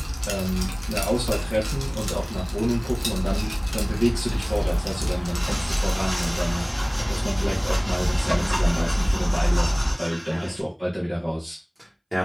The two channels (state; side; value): identical; both; correlation 1.00